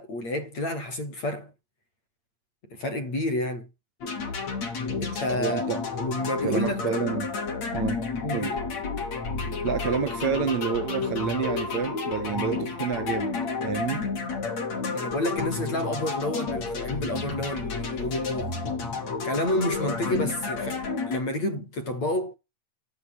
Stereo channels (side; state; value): right; late; 8.7 ms